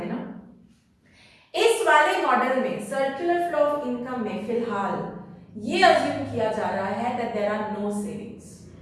इस वाले मॉडल में सर्कुलर फ्लो ऑफ इनकम में फिलहाल ये अज्यूम किया जा रहा है that there are no savings.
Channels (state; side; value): identical; both; correlation 1.00